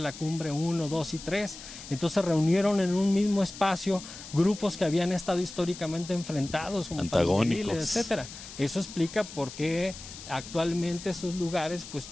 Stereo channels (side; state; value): left; noise; hiss, 14 dB below the sound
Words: Cumbre 1, 2 y 3. Entonces se reunieron en un mismo espacio grupos que habían estado históricamente enfrentados, como antagónicos, etcétera. Eso explica por qué actualmente esos lugares pues